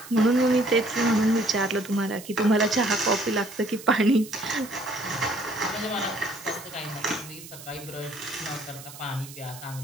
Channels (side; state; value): right; noise; hiss, 16 dB below the sound